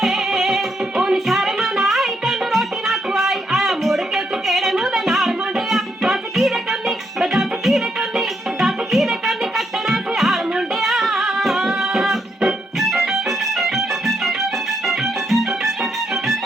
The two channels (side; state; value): both; normal; correlation 0.77